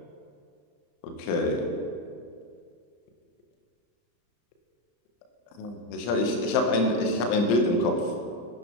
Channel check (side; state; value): right; late; 34 ms